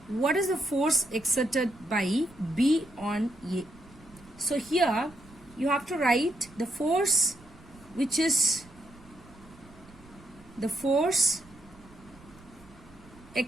What is the force exerted by B on A? So here you have to write the force which is the force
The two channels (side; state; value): right; noise; rumble, 23 dB below the sound